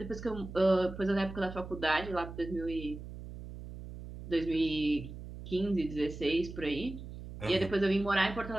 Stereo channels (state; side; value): noise; right; hum, 11 dB below the sound